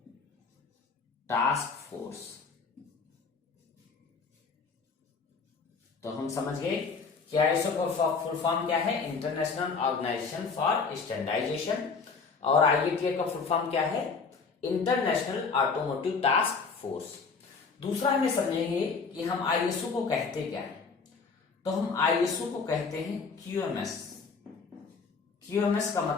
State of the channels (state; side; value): quieter; right; 4.9 dB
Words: Task Force. तो हम समझ गए कि आईएसओ का फुल फॉर्म क्या है? International Organization for Standardization. और आईएटीएफ का फुल फॉर्म क्या है? International Automotive Task Force. दूसरा हमें समझेंगे कि हम आईएसओ को कहते क्या है। तो हम आईएसओ को कहते हैं क्यूएमएस। क्यूएमएस का